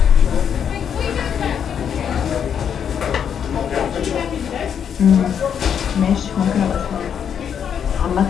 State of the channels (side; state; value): right; quieter; 8.1 dB